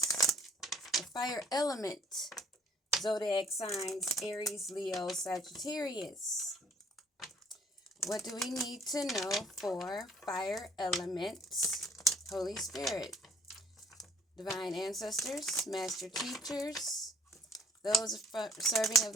the fire element, zodiac signs, Aries, Leo, Sagittarius. What do we need to know for fire elements? Holy Spirit, divine ancestors, master teachers, those serving of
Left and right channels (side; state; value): both; normal; correlation 0.59